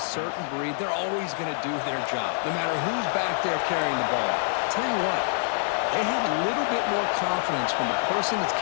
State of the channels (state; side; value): silent; right; digital silence